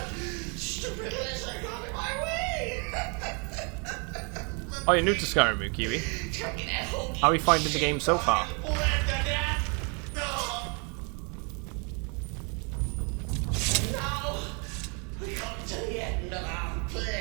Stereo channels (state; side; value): quieter; left; 34.9 dB